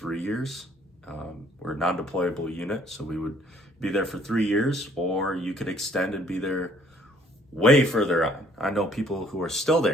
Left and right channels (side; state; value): both; normal; correlation 0.61